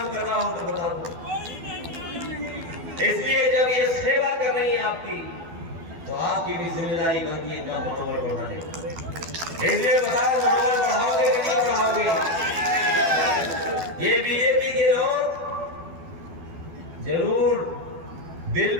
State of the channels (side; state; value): left; late; 12 ms